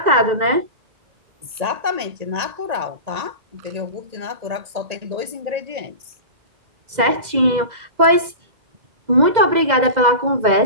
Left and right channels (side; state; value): left; late; 2.0 ms